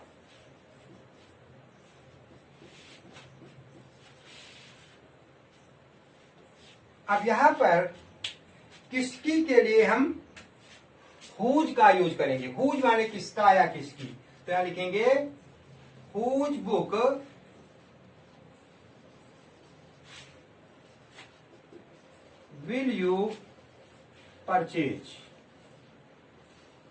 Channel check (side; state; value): both; identical; correlation 1.00